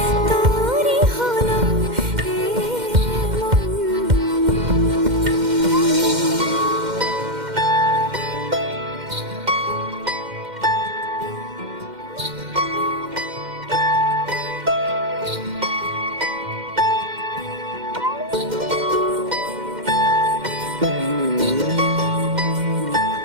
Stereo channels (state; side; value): late; left; 2.1 ms